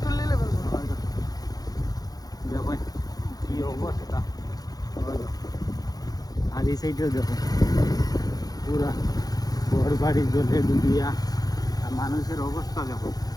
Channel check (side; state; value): right; late; 0.18 ms